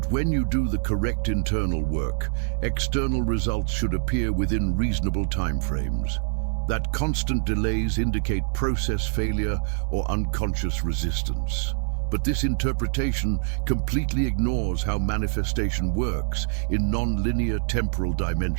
when you do the correct internal work, external results should appear within reasonable timeframes. That constant delays indicate process failure or unconscious resistance. But this interpretation completely ignores how manifestation works in non-linear temporal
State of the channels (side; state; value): left; silent; digital silence